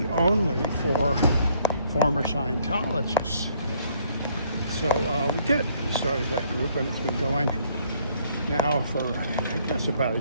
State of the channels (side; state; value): both; inverted; correlation -0.65